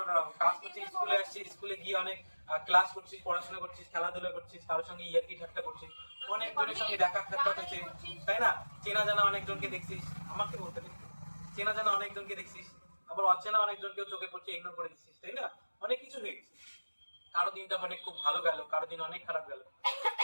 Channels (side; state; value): both; inverted; correlation -1.00